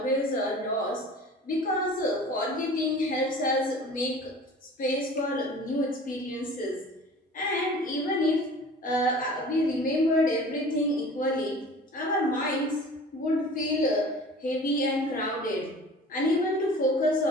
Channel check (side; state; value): both; normal; correlation 0.43